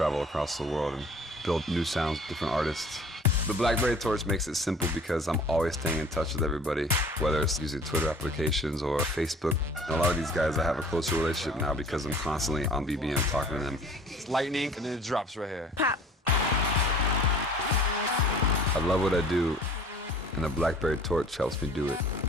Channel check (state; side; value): normal; both; correlation 0.49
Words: across the world and build new sounds, different artists. The BlackBerry Torch makes it simple because I'm always staying in touch with everybody, whether it's using Twitter applications or Facebook. And a lot of these guys, I have a closer relationship now because I'm constantly on BBM talking to them. It's lightning, and then it drops right here. Pop. I love what I do, and the BlackBerry Torch helps me do it.